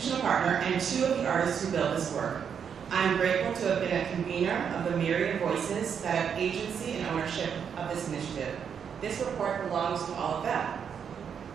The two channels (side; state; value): left; quieter; 7.4 dB